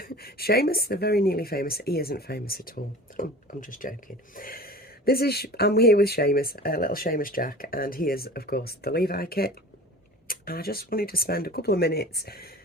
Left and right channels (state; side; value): normal; both; correlation 0.39